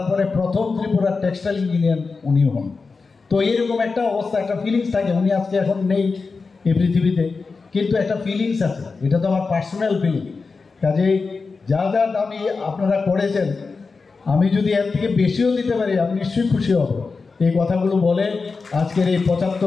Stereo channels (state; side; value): quieter; right; 4.4 dB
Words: পরে প্রথম ত্রিপুরার টেক্সটাইল ইঞ্জিনিয়ার উনি হন। তো এরকম একটা অবস্থা, একটা ফিলিংস থাকে। উনি আজকে এখন নেই এই পৃথিবীতে, কিন্তু একটা ফিলিংস আছে, এটা তো আমার পার্সোনাল ফিলিং। কাজেই যা যা দামি আপনারা করেছেন, আমি যদি এর থেকে বেশিও দিতে পারি আমি নিশ্চয়ই খুশি হব। এই কথাগুলো বলে আজকের এই